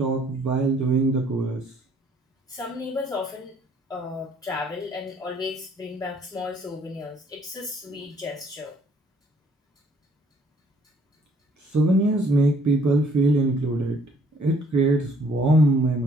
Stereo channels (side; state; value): both; normal; correlation 0.62